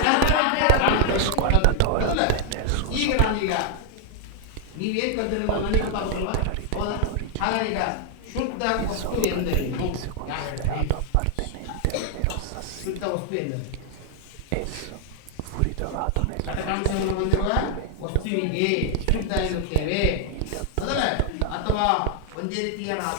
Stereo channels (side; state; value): both; different; correlation 0.00